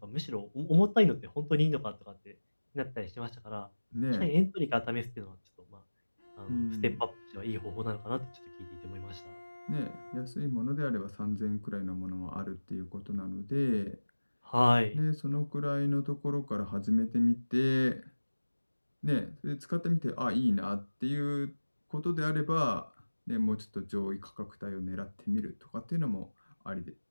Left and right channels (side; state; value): both; inverted; correlation -1.00